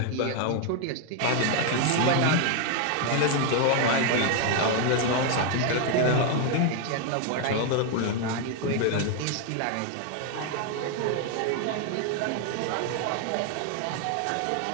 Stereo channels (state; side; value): different; both; correlation 0.01